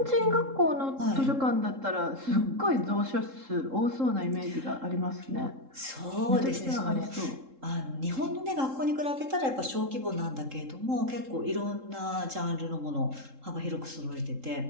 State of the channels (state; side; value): late; left; 3.7 ms